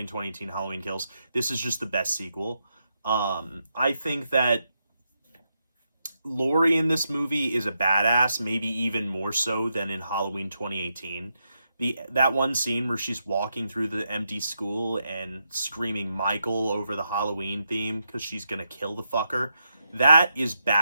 2018 Halloween Kills. This is just the best sequel. I think that Laurie in this movie is a badass, maybe even more so than in Halloween 2018. That one scene where she's walking through the empty school and screaming Michael over the Halloween theme because she's gonna kill the fucker, that is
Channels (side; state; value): both; inverted; correlation -0.83